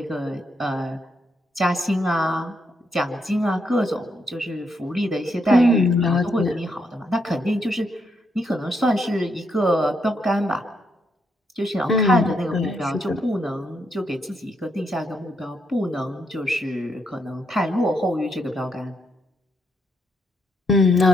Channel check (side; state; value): both; normal; correlation 0.78